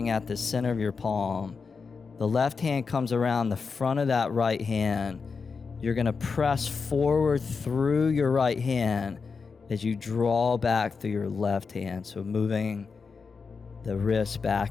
at the center of your palm. The left hand comes around the front of that right hand. You're going to press forward through your right hand as you draw back through your left hand. So moving the wrist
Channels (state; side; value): quieter; right; 5.1 dB